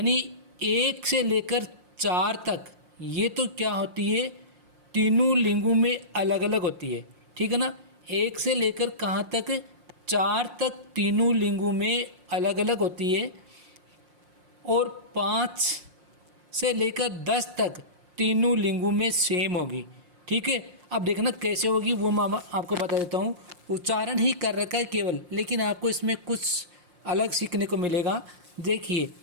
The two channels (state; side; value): late; left; 5.6 ms